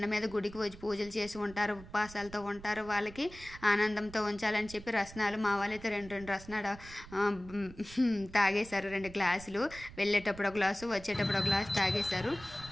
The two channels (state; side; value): noise; right; rumble, 17 dB below the sound